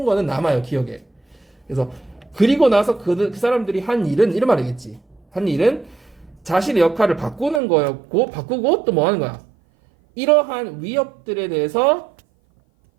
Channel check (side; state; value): left; drops out; at 7.6 s